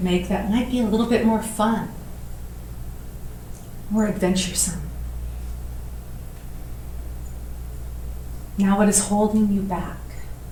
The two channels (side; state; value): both; identical; correlation 1.00